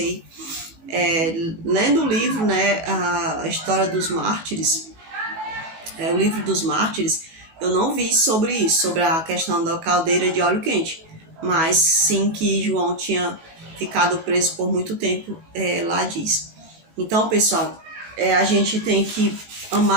Lendo o livro, né, a história dos mártires, o livro dos mártires, eu não vi sobre isso, sobre a questão da caldeira de óleo quente, mas sim que João tinha ficado preso por muito tempo, lá diz. Então, pessoal, a gente tem que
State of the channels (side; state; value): left; late; 19 ms